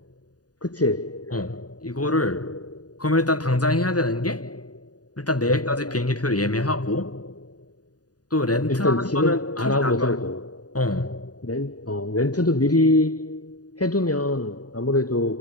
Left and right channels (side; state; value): right; late; 0.68 ms